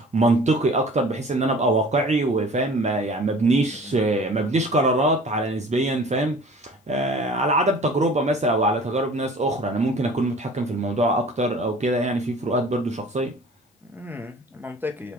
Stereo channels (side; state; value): both; normal; correlation 0.46